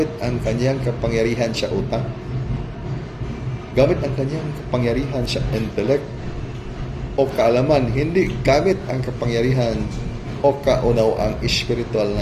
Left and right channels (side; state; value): both; identical; correlation 1.00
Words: ang kanyang kapangyarihan sa utak, gamit ang kanyang kapangyarihan sa intellect o kaalaman, hindi gamit ang kapangyarihan o kaunawang spiritual